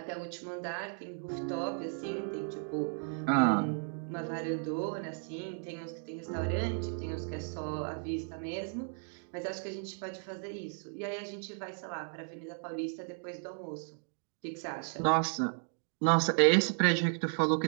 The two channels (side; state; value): left; silent; 55 dB below the other